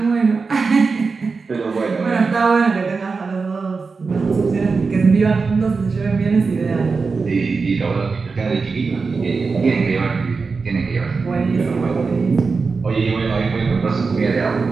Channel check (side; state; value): left; quieter; 4.6 dB